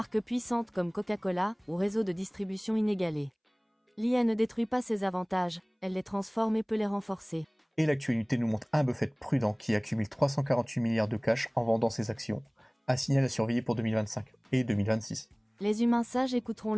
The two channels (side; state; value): both; identical; correlation 1.00